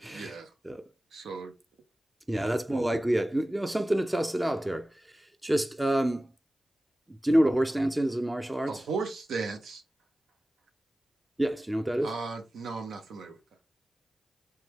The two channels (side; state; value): both; normal; correlation 0.96